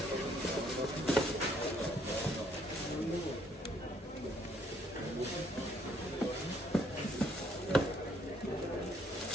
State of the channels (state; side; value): normal; both; correlation 0.67